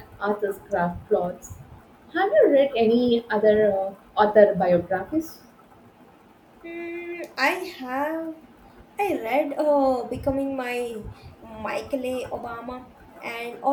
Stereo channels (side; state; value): both; identical; correlation 1.00